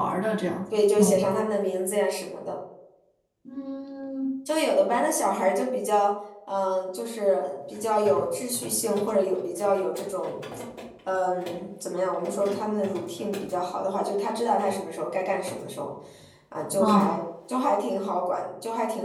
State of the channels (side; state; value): both; identical; correlation 1.00